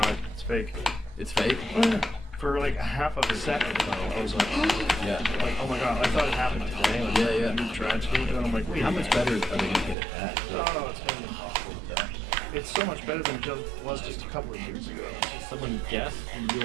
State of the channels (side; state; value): left; drops out; at 10.0 s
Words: It's fake. It's fake? For like a half of a second, though, I was like, Yeah. like, oh my god, I thought it happened today. Like, Yeah. New tragedy, and I'm like, wait. How much better are they going to get at that? Oh, it's gonna be impossible to tell. It's so much better than it was just a couple of years ago. Someone guessed the